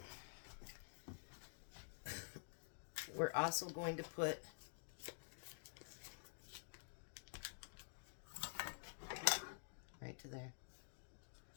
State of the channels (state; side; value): silent; right; digital silence